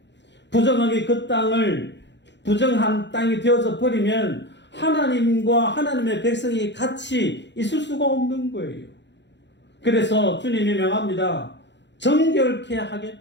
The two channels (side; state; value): right; late; 0.52 ms